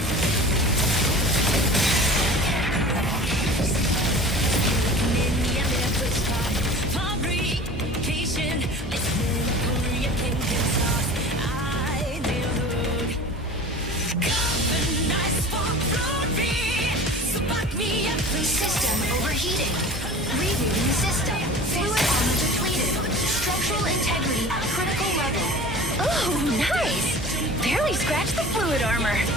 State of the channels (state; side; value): normal; both; correlation 0.40